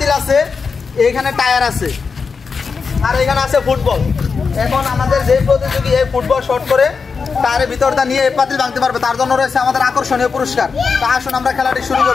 আছে, এখানে টায়ার আছে, আর এখানে আছে ফুটবল। এখন আমাদের যে প্রতিযোগী এই ফুটবল শট করে টায়ারের ভিতরটা নিয়ে এই পাতিল ভাঙতে পারবে, তার জন্য রয়েছে আমাদের আকর্ষণীয় পুরস্কার। তা আসুন আমরা খেলাটি শুরু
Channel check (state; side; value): quieter; right; 5.2 dB